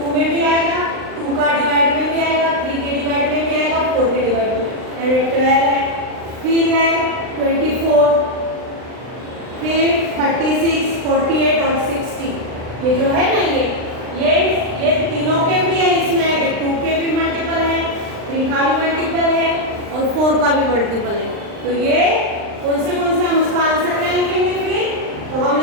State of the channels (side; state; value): left; late; 39 ms